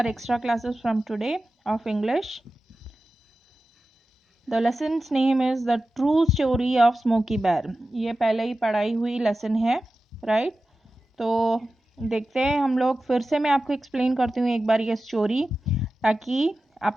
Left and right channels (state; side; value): normal; both; correlation 0.94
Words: extra classes from today of English. The lesson's name is The True Story of Smokey Bear. ये पहले ही पढ़ाई हुई lesson है, right? तो देखते हैं हम लोग, फिर से मैं आपको एक्सप्लेन करती हूँ एक बार ये स्टोरी, ताकि